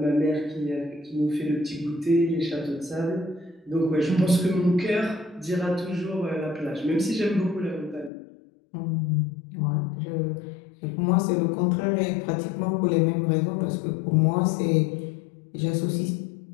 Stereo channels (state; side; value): drops out; right; at 8.1 s